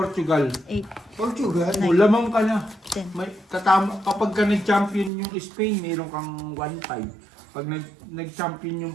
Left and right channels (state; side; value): drops out; left; at 5.1 s